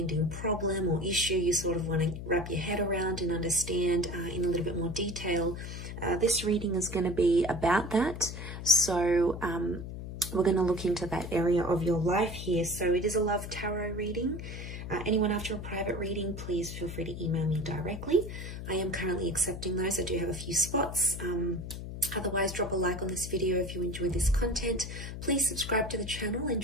problem or issue you sort of want to wrap your head around and understand in a little bit more detail. This reading is going to be about that. So we're going to look into that area of your life here. So it is a love tarot reading. Anyone after a private reading, please feel free to email me directly. I am currently accepting those. I do have a few spots. Otherwise, drop a like on this video if you enjoyed this content. Please subscribe to the channel and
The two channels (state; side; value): noise; left; hum, 8 dB below the sound